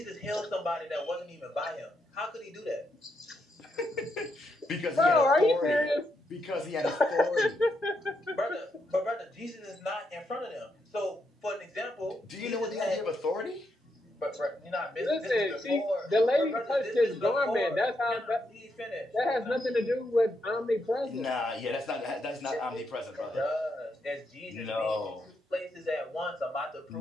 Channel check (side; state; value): both; normal; correlation 0.80